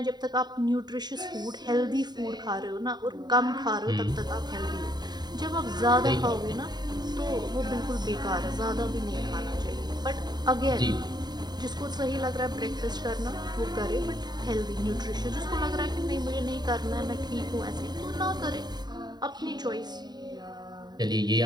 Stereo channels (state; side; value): late; left; 0.20 ms